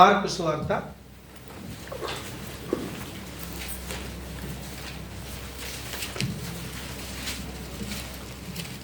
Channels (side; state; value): both; identical; correlation 1.00